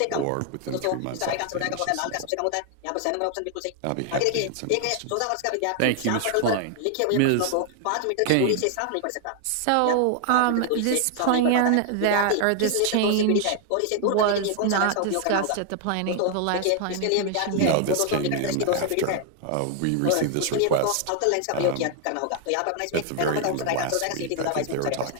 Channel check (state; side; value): different; both; correlation 0.00